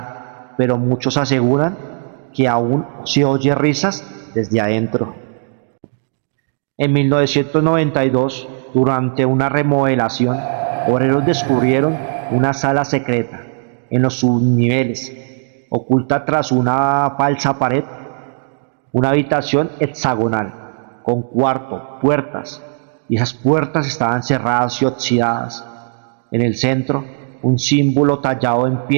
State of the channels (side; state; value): left; silent; digital silence